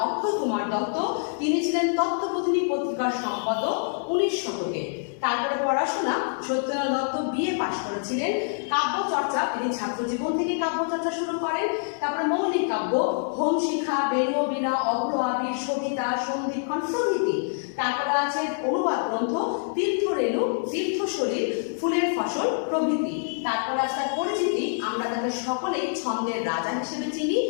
অক্ষয় কুমার দত্ত। তিনি ছিলেন তত্ত্ববোধিনী পত্রিকার সম্পাদক 19 শতকে। তারপরে পড়াশোনা, সত্যেন্দ্রনাথ দত্ত বিএ পাশ করেছিলেন। কাব্য চর্চা, তিনি ছাত্র জীবন থেকে কাব্য চর্চা শুরু করেন। তারপরে মৌলিক কাব্য, হোম শিখা, বেণু বীণা, অভ্র আবির, সবিতা, সন্ধিক্ষণ প্রভৃতি। তারপরে আছে অনুবাদ গ্রন্থ তীর্থরেণু, তীর্থশরীর, ফুলের ফসল প্রভৃতি। তারপরে আছে তার পরিচিতি, আমরা তাকে সকলেই ছন্দের রাজা হিসেবে চিনি।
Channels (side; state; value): right; silent; digital silence